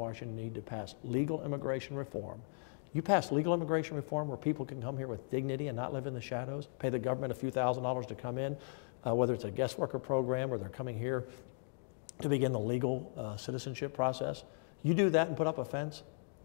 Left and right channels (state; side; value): silent; right; digital silence